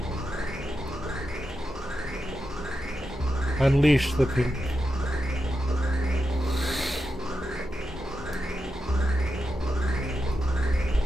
Unleash the pink.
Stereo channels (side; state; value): both; normal; correlation 0.88